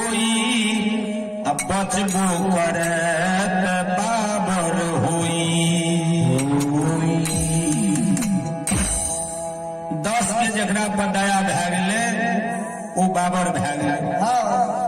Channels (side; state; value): both; identical; correlation 1.00